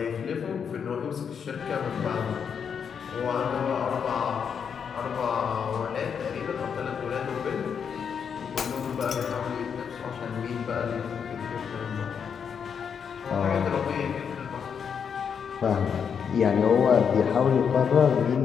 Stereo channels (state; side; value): quieter; right; 7.0 dB